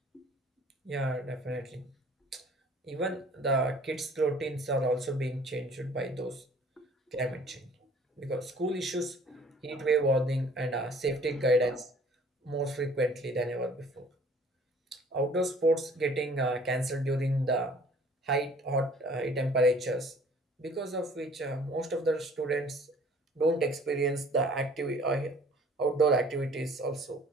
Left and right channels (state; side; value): normal; both; correlation 0.53